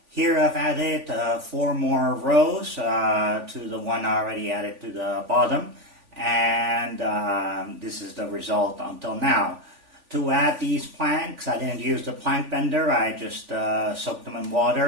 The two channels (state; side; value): late; left; 3.5 ms